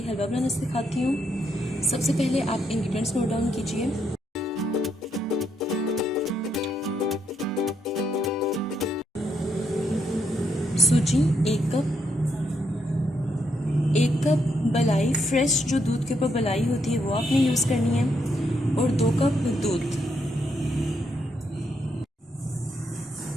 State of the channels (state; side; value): normal; both; correlation 0.77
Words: हलवा बनाना सिखाती हूँ। सबसे पहले आप इंग्रेडिएंट्स नोट डाउन कीजिए। सूजी 1 कप मलाई फ्रेश जो दूध के ऊपर मलाई होती है वो आपने यूज़ करनी है, और 2 कप दूध।